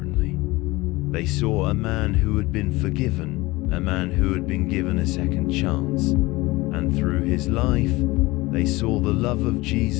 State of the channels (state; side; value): quieter; right; 21.2 dB